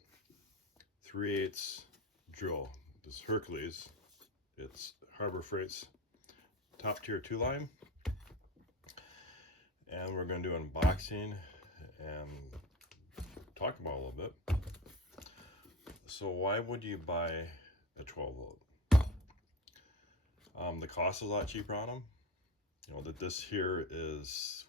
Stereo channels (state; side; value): normal; both; correlation 0.29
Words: 3/8 drill. This Hercules, it's Harbor Freight's top tier 2 line, and we're going to do unboxing and talk about it a little bit. So why would you buy a 12 volt? The cost is a lot cheaper on them. You know that this here